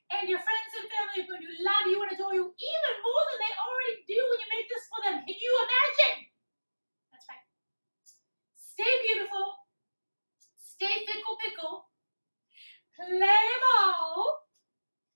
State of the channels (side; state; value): both; inverted; correlation -1.00